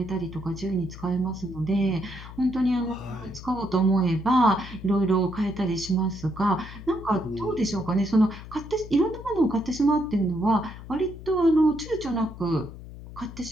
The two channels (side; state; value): left; noise; hum, 14 dB below the sound